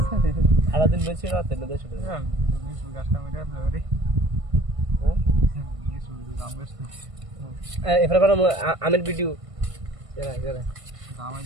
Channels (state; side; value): late; left; 1.5 ms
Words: সারাদিন বেশি রাতে এবার আমের ভিডিও